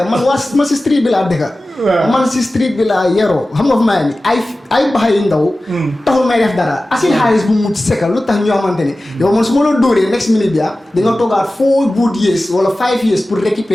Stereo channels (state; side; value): normal; both; correlation 0.96